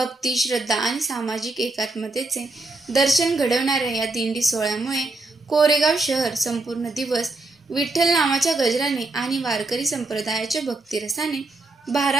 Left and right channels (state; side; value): quieter; left; 3.1 dB